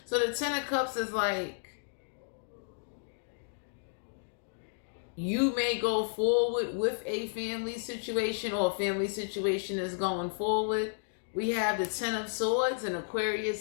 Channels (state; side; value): silent; right; digital silence